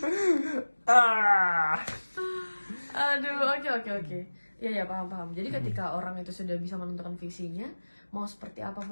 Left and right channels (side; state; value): both; inverted; correlation -1.00